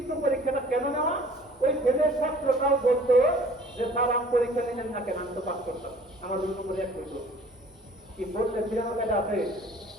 পরীক্ষাটা কেন নেওয়া? ওই ফেলের ছাত্রটাও বলতো যে স্যার আমি পরীক্ষা নিলেন না কেন, আমি তো পাস করতাম, আমার রুল নম্বর 1 করতো। কি বলতে ফিরানোর কায়দা আছে?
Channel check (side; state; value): both; normal; correlation 0.51